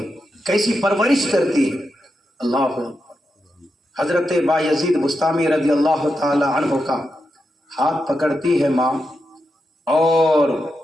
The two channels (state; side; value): normal; both; correlation 0.87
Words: کیسی پرورش کرتی ہے، اللہ اکبر۔ حضرت بایزید بسطامی رضی اللہ تعالی عنہ کا ہاتھ پکڑتی ہے ماں، اور